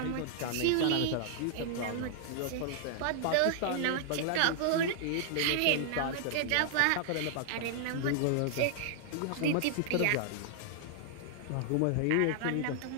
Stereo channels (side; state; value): both; different; correlation -0.01